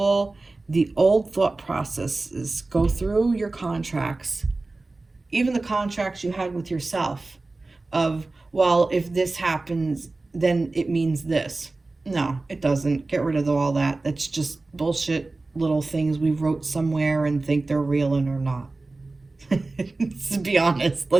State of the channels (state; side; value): quieter; left; 3.3 dB